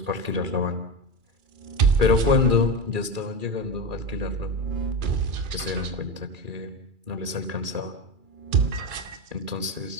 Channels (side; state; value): left; late; 2.3 ms